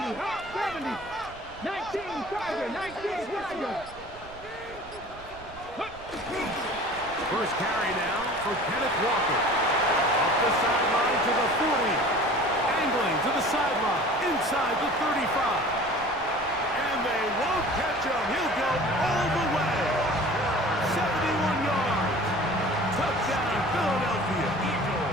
First carry now for Kenneth Walker. Up the sideline to the 40. Angling to the sideline, inside the 35. And they won't catch him. He'll go all the way. 71 yards. Touchdown, Philadelphia.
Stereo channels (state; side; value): noise; right; rumble, 19 dB below the sound